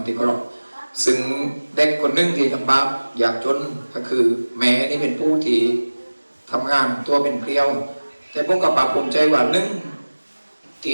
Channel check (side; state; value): both; inverted; correlation -1.00